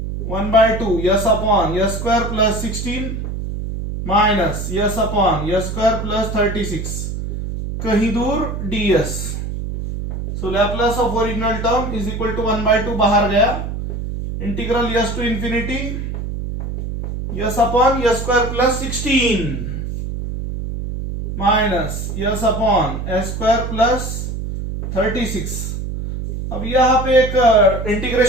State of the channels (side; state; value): right; noise; hum, 5 dB below the sound